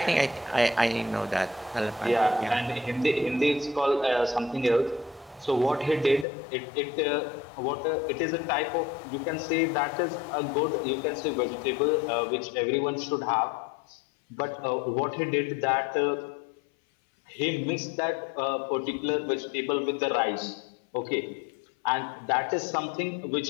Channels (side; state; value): right; drops out; at 6.2 s